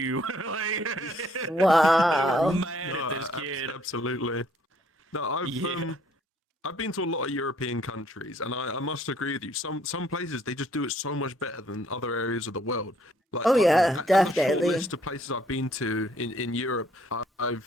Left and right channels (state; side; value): normal; both; correlation 0.64